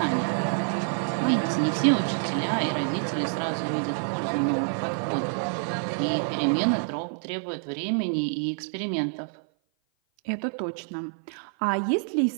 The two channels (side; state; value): left; silent; 56 dB below the other